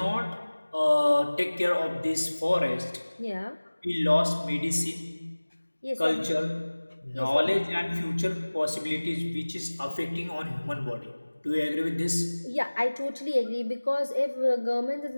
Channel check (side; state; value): both; inverted; correlation -1.00